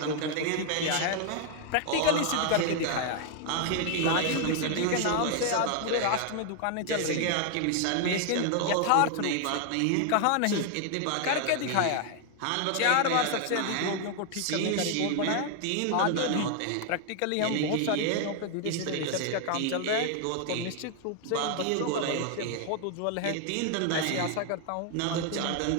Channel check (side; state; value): both; different; correlation 0.00